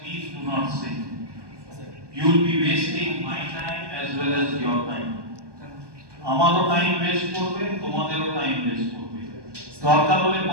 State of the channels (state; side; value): late; left; 1.2 ms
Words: do not sit. You will be wasting my time as well as your time. আমারও time waste করবে, তোমাদেরও time waste করবে। দরকার হলে